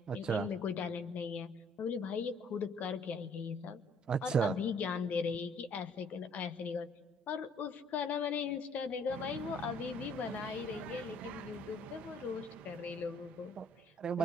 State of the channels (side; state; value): both; normal; correlation 0.60